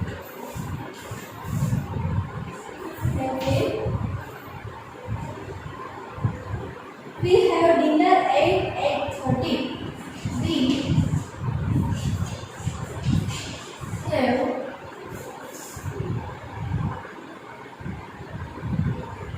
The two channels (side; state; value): both; identical; correlation 1.00